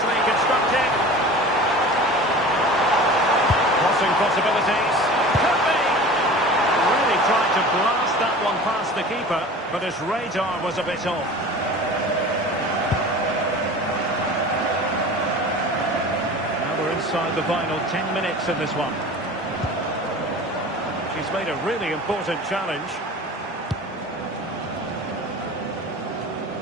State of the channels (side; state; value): both; normal; correlation 0.38